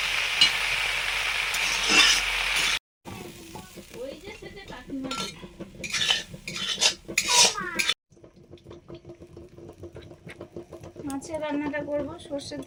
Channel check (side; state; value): both; identical; correlation 1.00